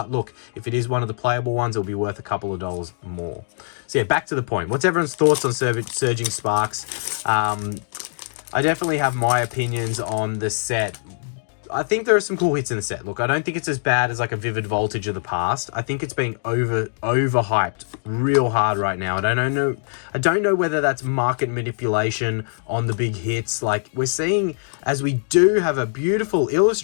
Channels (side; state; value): right; silent; digital silence